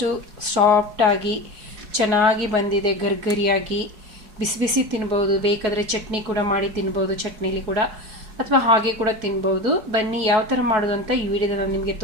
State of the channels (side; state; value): left; late; 4.6 ms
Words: ಸಾಫ್ಟಾಗಿ ಚೆನ್ನಾಗಿ ಬಂದಿದೆ. ಗರ್ಗರಿಯಾಗಿ ಬಿಸಿ ಬಿಸಿ ತಿನ್ಬೋದು. ಬೇಕಾದರೆ ಚಟ್ನಿ ಕೂಡ ಮಾಡಿ ತಿನ್ಬೋದು, ಚಟ್ನಿಲಿ ಕೂಡ, ಅಥವಾ ಹಾಗೆ ಕೂಡ ತಿನ್ಬೋದು. ಬನ್ನಿ ಯಾವ ಥರ ಮಾಡೋದು ಅಂತ ಈ ವಿಡಿಯೋದಲ್ಲಿ ನಾನು ನಿಮಗೆ